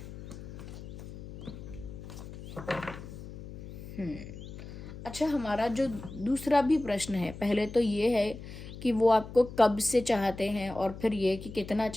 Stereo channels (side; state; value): left; noise; hum, 12 dB below the sound